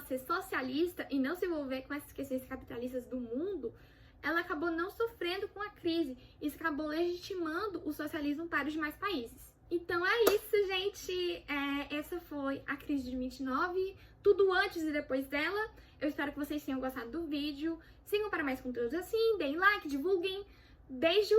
socialista e não se envolver com essas questões capitalistas do mundo, ela acabou não sofrendo com a crise. Isso acabou legitimando o socialismo para os demais países. Então é isso, gente. Essa foi a crise de 29, tudo antes e depois dela. Eu espero que vocês tenham gostado do vídeo. Sigam para mais conteúdos assim, deem like, divulguem. Beijo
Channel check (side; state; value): both; identical; correlation 1.00